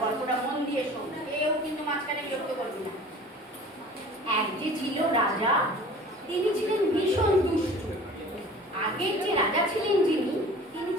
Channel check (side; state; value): both; normal; correlation 0.44